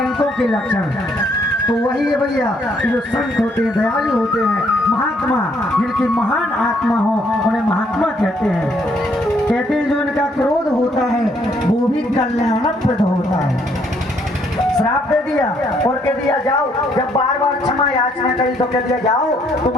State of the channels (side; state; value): both; normal; correlation 0.69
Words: के लक्षण तो वही है भैया कि जो संत होते हैं, दयालु होते हैं, महात्मा, जिनकी महान आत्मा हो उन्हें महात्मा कहते हैं। कहते हैं जो इनका क्रोध होता है वो भी कल्याणप्रद होता है। श्राप दे दिया और कह दिया जाओ, जब बार बार क्षमा याचना करी तो कह दिया जाओ